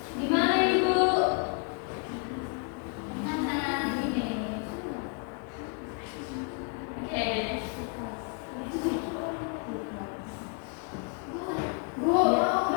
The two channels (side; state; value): right; quieter; 39.7 dB